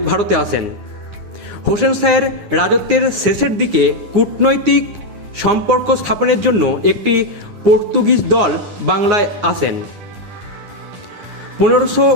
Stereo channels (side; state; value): left; late; 9.7 ms